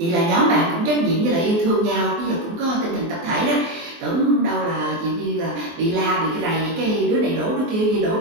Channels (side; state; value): left; late; 23 ms